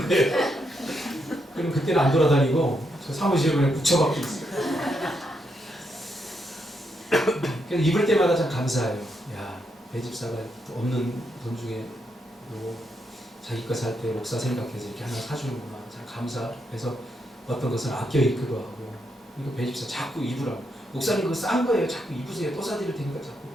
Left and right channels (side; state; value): both; normal; correlation 0.80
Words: 거예요. 그럼 그때는 안 돌아다니고 저 사무실에 그냥 붙여박고 있어요. 그래서 입을 때마다 참 감사해요. 야, 배 집사가 없는 돈 중에 자기 거 살 때 목사 생각해서 이렇게 하나 사주는구나. 참 감사해서 어떤 것은 아껴 입기도 하고. 이거 배 집사 자꾸 입으라고. 목사님 그거 싼 거예요. 자꾸 입으세요. 또 사드릴 테니까 자꾸.